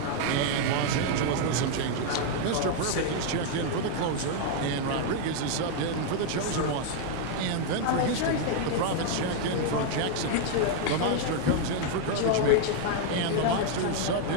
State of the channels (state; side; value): different; both; correlation 0.00